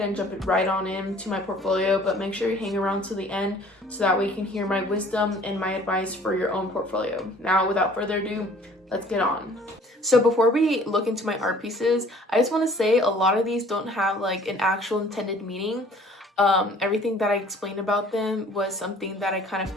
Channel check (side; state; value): both; normal; correlation 0.53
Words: jump right on into my portfolio, but make sure you hang around to the end so that way you can hear my wisdom and my advice for your own portfolio. Now, without further ado, let's get on. So before we look into my art pieces, I just want to say a lot of these don't have like an actual intended meaning. Everything that I explained about them was something that I kind of